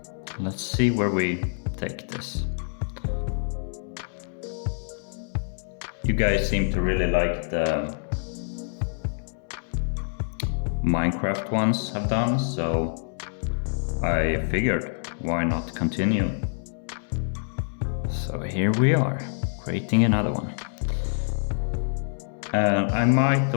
let's see where we take this. You guys seem to really like the Minecraft ones I've done, so I figured why not continue. So here we are, creating another one. I might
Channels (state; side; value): silent; right; digital silence